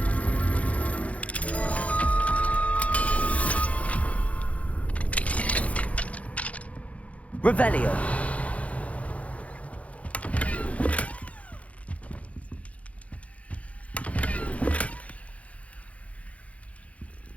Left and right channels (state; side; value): late; right; 0.066 ms